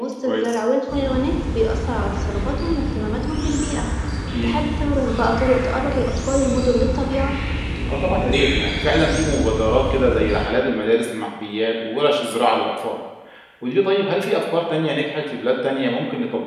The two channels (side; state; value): both; identical; correlation 1.00